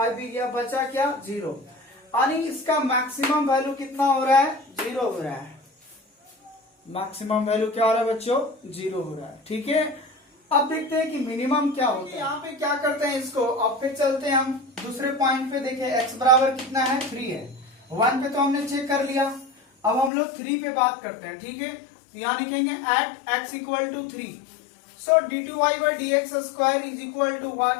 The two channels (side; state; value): right; drops out; at 20.1 s